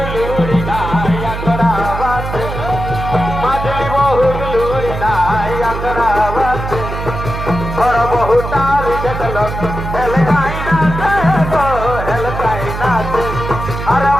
লুড়ি নাই আকড়া বাজে মাজলি বহুর লুড়ি নাই আকড়া বাজে বড় বহু তারি দেখল হেলকাই নাচে গো হেলকাই নাচে আর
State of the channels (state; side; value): noise; right; hum, 6 dB below the sound